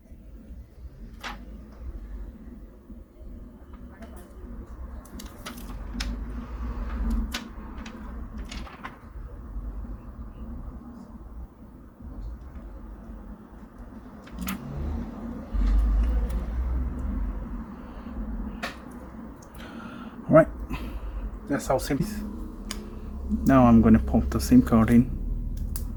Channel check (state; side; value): identical; both; correlation 1.00